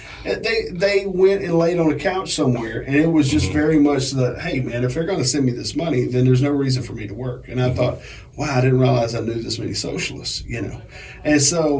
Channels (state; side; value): identical; both; correlation 1.00